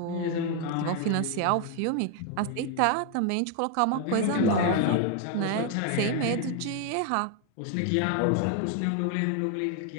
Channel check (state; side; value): different; both; correlation 0.01